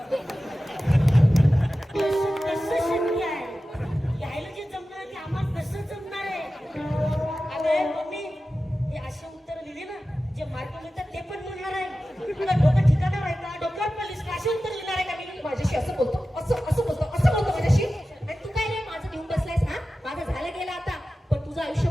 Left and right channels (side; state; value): both; normal; correlation 0.94